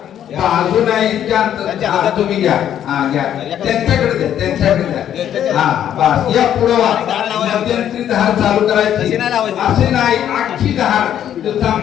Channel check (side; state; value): right; quieter; 10.3 dB